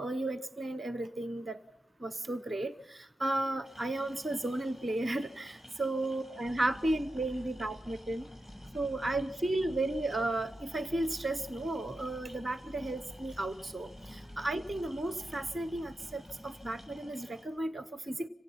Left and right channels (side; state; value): both; normal; correlation 0.90